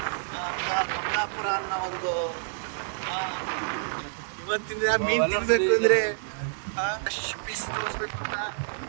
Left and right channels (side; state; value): left; silent; digital silence